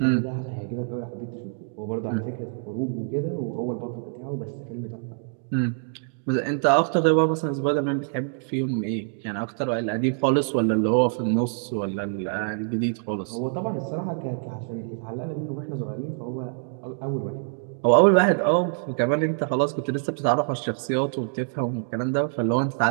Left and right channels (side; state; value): left; silent; digital silence